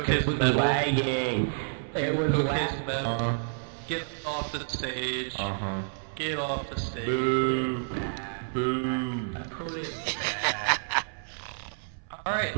his medal. Lagging. It was his medal. Get off the stage. Get off the stage. Boo. Boo. Put it Alright.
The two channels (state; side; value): silent; left; 58 dB below the other